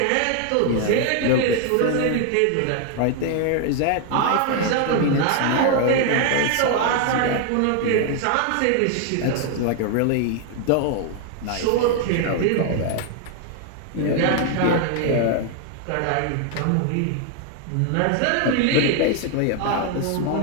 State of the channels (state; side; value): different; both; correlation 0.00